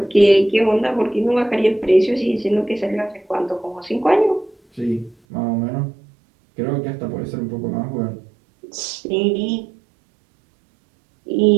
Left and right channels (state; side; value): drops out; left; at 5.2 s